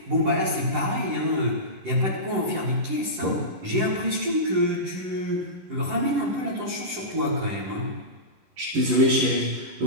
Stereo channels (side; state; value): left; late; 10 ms